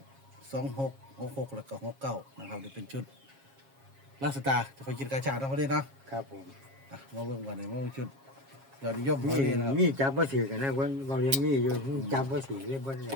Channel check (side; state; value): left; late; 7.4 ms